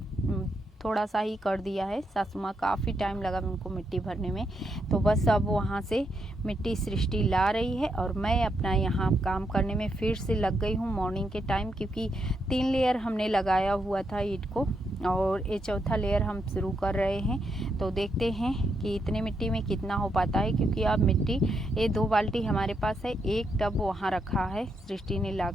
थोड़ा सा ही कर दिया है। सासू माँ काफ़ी टाइम लगा उनको मिट्टी भरने में। तो बस अब वहाँ से मिट्टी सृष्टि ला रही है और मैं अपना यहाँ काम करने में फिर से लग गई हूँ मॉर्निंग के टाइम, क्योंकि 3 लेयर हमने लगाया हुआ था ईंट को और ये चौथा लेयर हम शुरू कर रहे हैं। तो देखते हैं कि इतने मिट्टी में कितना हो पाता है, क्योंकि अब मिट्टी ये 2 बाल्टी हमारे पास है, एक टब वहाँ रखा है, सृष्टि ने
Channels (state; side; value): normal; both; correlation 0.80